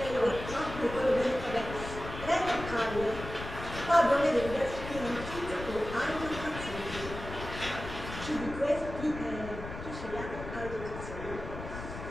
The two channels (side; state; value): left; noise; rumble, 9 dB below the sound